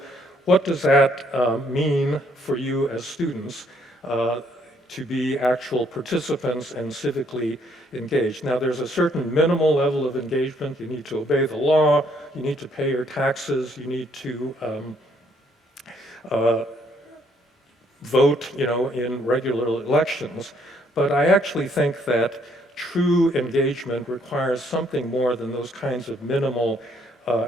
what does that mean for you as students to be actual participants and civically engaged? Now, there's a certain minimal level of engagement. You need to obey the law, you need to pay your taxes, you need to vote, in regular elections. But I actually think that true engagement requires something more than those kinds of minimal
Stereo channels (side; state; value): both; normal; correlation 0.67